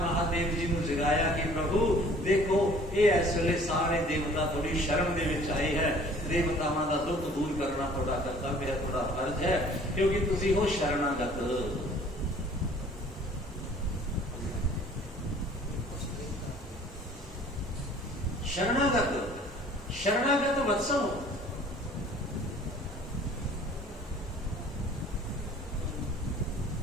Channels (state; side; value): normal; both; correlation 0.52